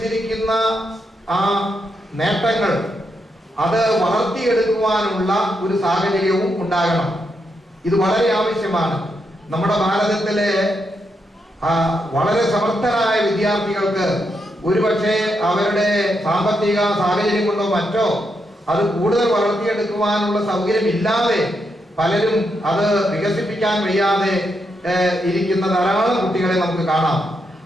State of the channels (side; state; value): both; normal; correlation 0.82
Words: ആ നേട്ടങ്ങൾ അത് വളർത്തിയെടുക്കുവാനുള്ള ഒരു സാഹചര്യവും ഉണ്ടാകണം. ഇത് വളരെ ആവശ്യമാണ്. നമ്മുടെ ഭാരതത്തിലെ വളരെ സമർത്ഥരായ വിദ്യാർത്ഥികൾക്ക് ഒരുപക്ഷെ അവരുടെ സാമ്പത്തിക സാഹചര്യം കൊണ്ടോ മറ്റോ അത് കൂടുതൽ വളർത്തിയെടുക്കുവാനുള്ള സൗകര്യം ഇല്ലാതെ പലരും അത് വികസിപ്പിക്കാൻ വയ്യാതെ ഇരിക്കുന്ന ധാരാളം കുട്ടികളെ നമുക്ക് കാണാം.